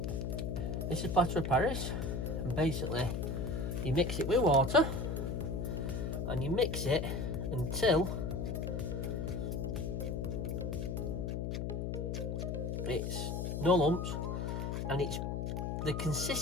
this is plaster of Paris, and basically you mix it with water and you mix it until it's no lumps, and it's the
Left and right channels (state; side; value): noise; left; hum, 2 dB below the sound